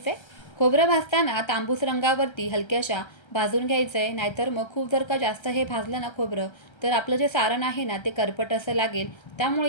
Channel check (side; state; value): right; late; 1.3 ms